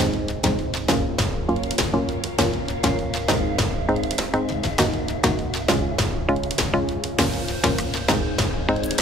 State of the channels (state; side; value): normal; both; correlation 0.66